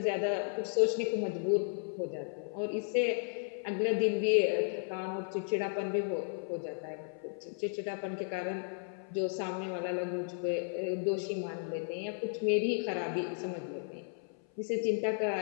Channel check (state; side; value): silent; right; 55 dB below the other